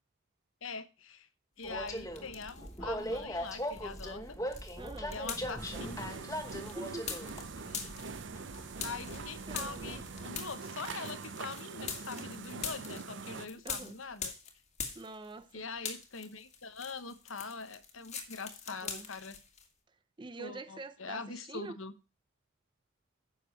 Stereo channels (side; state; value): both; normal; correlation 0.18